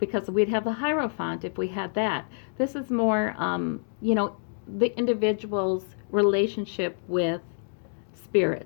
we'd have the Hierophant if we had that. This is more, the individual's relationship with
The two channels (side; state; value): right; silent; digital silence